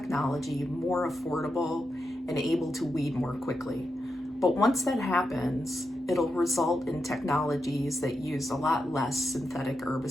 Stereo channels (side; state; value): both; normal; correlation 0.86